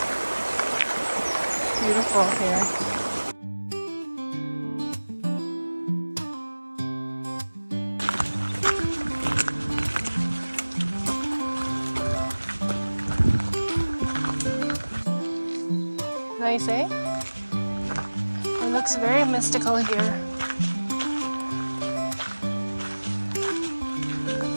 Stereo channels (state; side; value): inverted; both; correlation -1.00